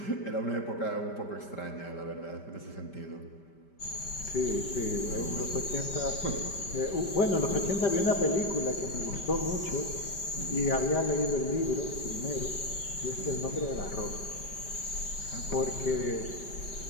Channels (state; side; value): late; right; 5.1 ms